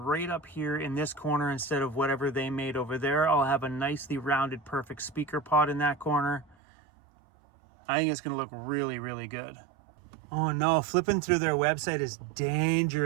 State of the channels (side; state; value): left; drops out; at 6.6 s